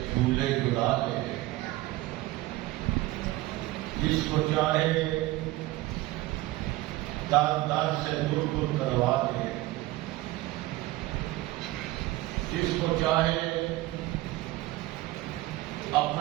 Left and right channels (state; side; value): quieter; left; 18.1 dB